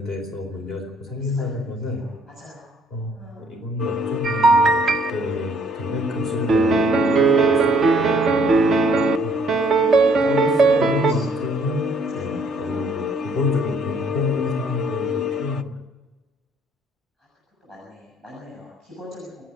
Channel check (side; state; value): both; normal; correlation 0.63